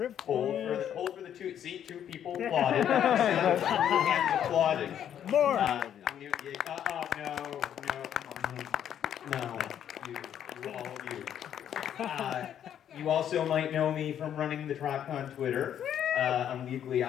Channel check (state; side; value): quieter; right; 9.7 dB